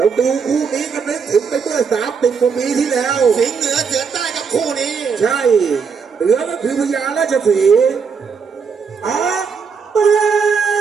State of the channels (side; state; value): left; quieter; 5.8 dB